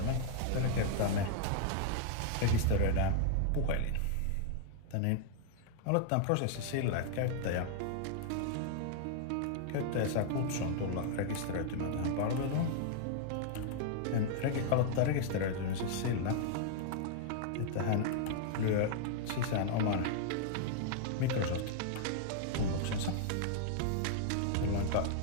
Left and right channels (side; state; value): both; different; correlation -0.01